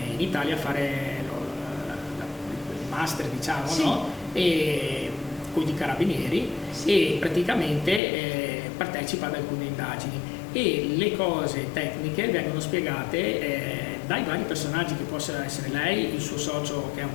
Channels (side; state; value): right; drops out; at 8.0 s